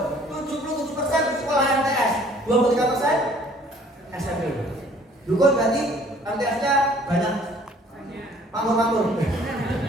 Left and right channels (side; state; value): both; normal; correlation 0.56